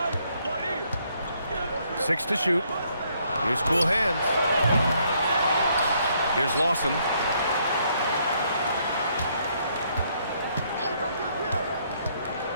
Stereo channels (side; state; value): both; inverted; correlation -0.70